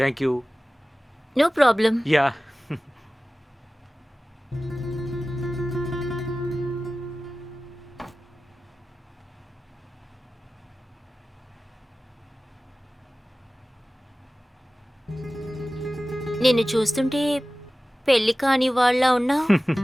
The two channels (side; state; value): both; normal; correlation 0.96